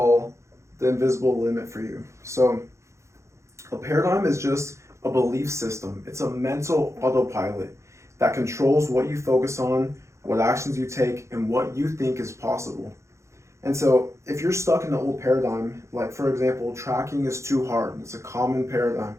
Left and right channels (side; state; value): left; late; 0.14 ms